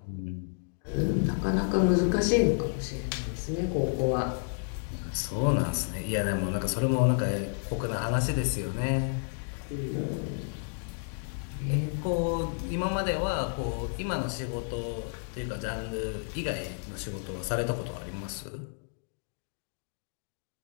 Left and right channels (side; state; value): right; silent; digital silence